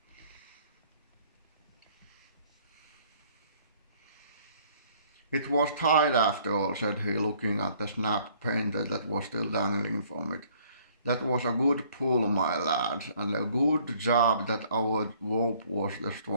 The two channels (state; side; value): inverted; both; correlation -0.60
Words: It was tied after all, said he, looking at the snapped painter that was still dangling from it. That was a good pull, my lads, and a good job that our rope was the